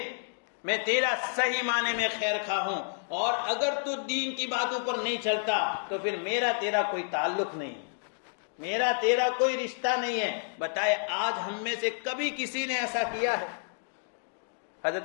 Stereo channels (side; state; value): right; silent; digital silence